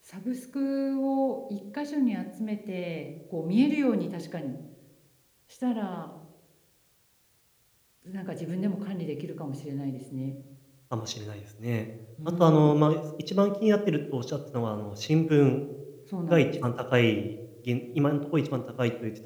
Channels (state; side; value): identical; both; correlation 1.00